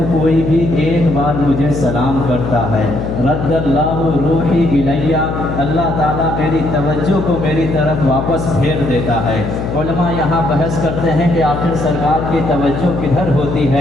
کوئی بھی ایک بار مجھے سلام کرتا ہے، رد اللہ روحی الیہ، اللہ تعالیٰ میری توجہ کو میری طرف واپس پھیر دیتا ہے۔ علماء یہاں بحث کرتے ہیں کہ آخر سرکار کی توجہ کدھر ہوتی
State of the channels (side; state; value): left; noise; hum, 4 dB below the sound